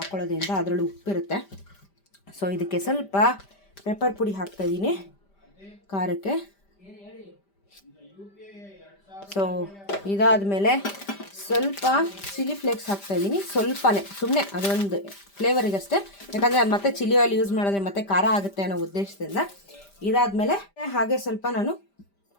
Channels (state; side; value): late; right; 5.1 ms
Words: ಅದರಲ್ಲೂ ಉಪ್ಪಿರುತ್ತೆ. ಸೊ ಇದಕ್ಕೆ ಸ್ವಲ್ಪ ಪೆಪ್ಪರ್ ಪುಡಿ ಹಾಕ್ತಾಯಿದ್ದೀನಿ ಖಾರಕ್ಕೆ. ಸೊ ಇದಾದಮೇಲೆ ಸ್ವಲ್ಪ ಚಿಲ್ಲಿ ಫ್ಲೇಕ್ಸ್ ಹಾಕ್ತಾಯಿದ್ದೀನಿ, ಸ್ವಲ್ಪನೇ, ಸುಮ್ಮನೆ ಅದೊಂದು ಫ್ಲೇವರಿಗಷ್ಟೇ. ಯಾಕಂದರೆ ಅದು ಮತ್ತೆ ಚಿಲ್ಲಿ ಆಯಿಲ್ ಯೂಸ್ ಮಾಡಿದ್ರೆ ಮತ್ತೆ ಖಾರ ಆಗುತ್ತೆ ಅನ್ನೋ ಉದ್ದೇಶದಿಂದ. ಇದಾದಮೇಲೆ ಹಾಗೆ ಸ್ವಲ್ಪ ನಾನು